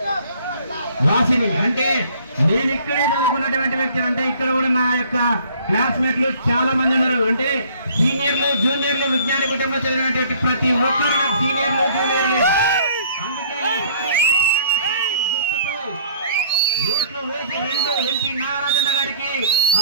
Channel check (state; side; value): inverted; both; correlation -0.56